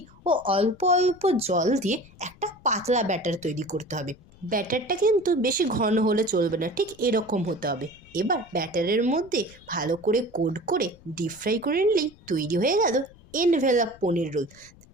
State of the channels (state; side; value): noise; left; rumble, 25 dB below the sound